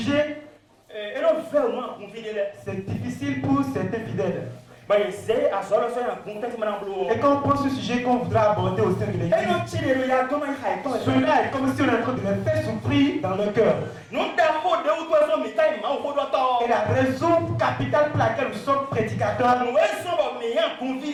c'est difficile pour certains fidèles. Et quand on prend ce sujet qu'on voudra aborder au sein de l'église, cela est comme si on est en train de les faire souffrir dans le cœur. Et la raison capitale pour laquelle nous sommes prédicateurs,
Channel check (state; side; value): identical; both; correlation 1.00